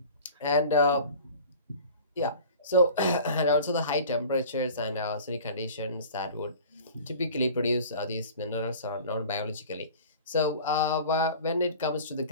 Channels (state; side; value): inverted; both; correlation -0.42